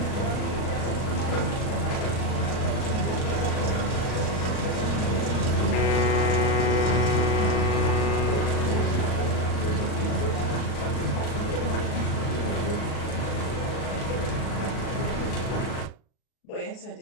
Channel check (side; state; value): right; late; 38 ms